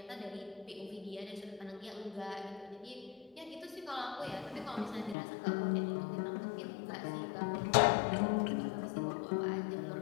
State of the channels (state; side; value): drops out; right; at 5.2 s